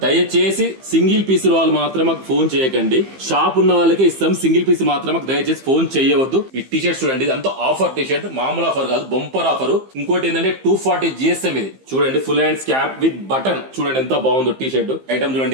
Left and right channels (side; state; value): left; late; 15 ms